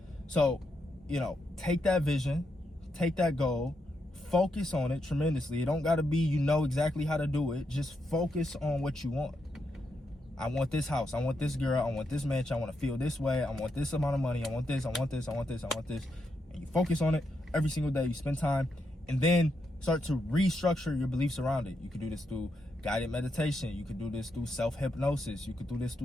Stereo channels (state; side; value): normal; both; correlation 0.82